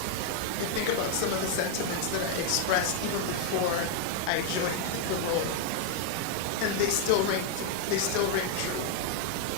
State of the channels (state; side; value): different; both; correlation 0.01